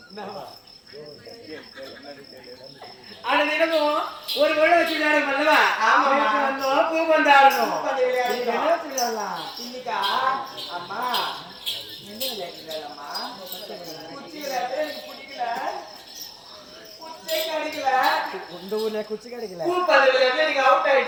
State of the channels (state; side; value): identical; both; correlation 1.00